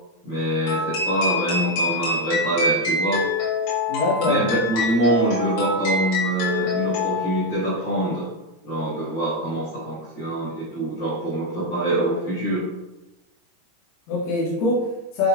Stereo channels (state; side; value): late; right; 17 ms